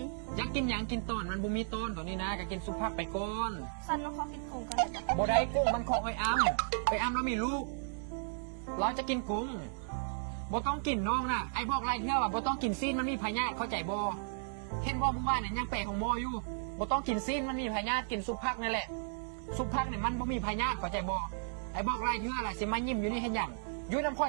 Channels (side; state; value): left; silent; digital silence